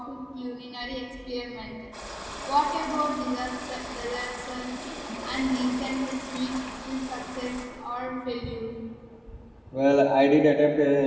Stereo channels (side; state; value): both; identical; correlation 1.00